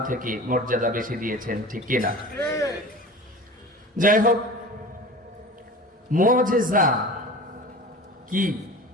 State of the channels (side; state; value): both; normal; correlation 0.36